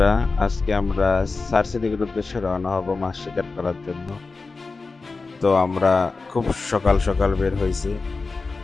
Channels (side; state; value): right; quieter; 4.0 dB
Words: আজকে আমরা সার্সি দিঘির উদ্দেশ্যে রওনা হব মাছ শিকার করার জন্য। তো আমরা খুব সকাল সকাল বের হয়েছি,